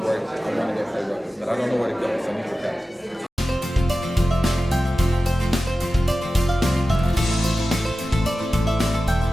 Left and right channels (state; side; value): normal; both; correlation 0.94